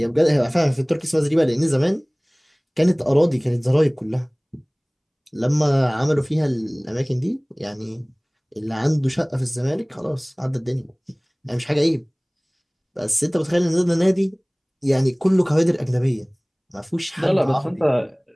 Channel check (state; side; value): identical; both; correlation 1.00